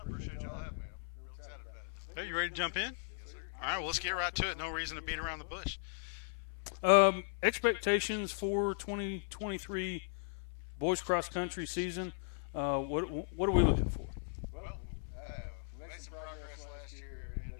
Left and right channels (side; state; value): right; silent; 53 dB below the other